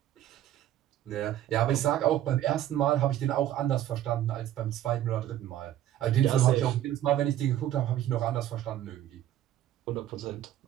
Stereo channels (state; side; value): quieter; left; 12.2 dB